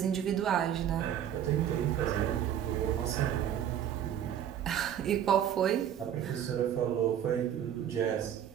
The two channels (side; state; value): left; quieter; 9.9 dB